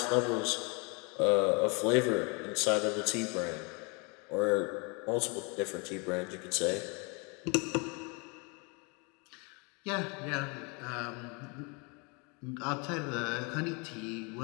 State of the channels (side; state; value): right; quieter; 31.8 dB